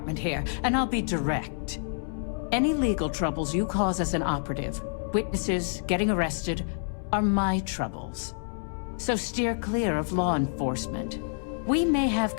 here, and I'll be direct. Any legal troubles you cause as an operative, witnesses, getting arrested, are my troubles. So steer clear of law enforcement. We may have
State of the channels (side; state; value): right; silent; digital silence